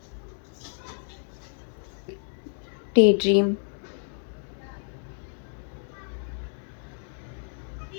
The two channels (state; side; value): silent; right; digital silence